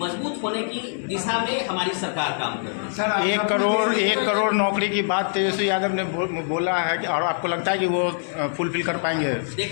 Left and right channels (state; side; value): silent; right; digital silence